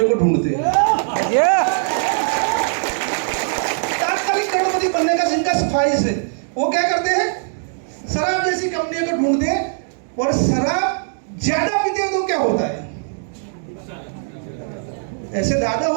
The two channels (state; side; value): silent; left; digital silence